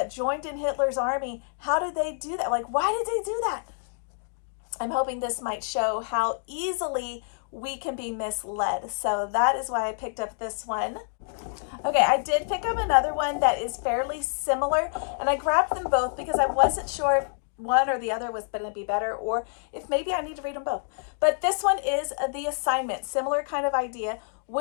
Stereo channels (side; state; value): right; silent; digital silence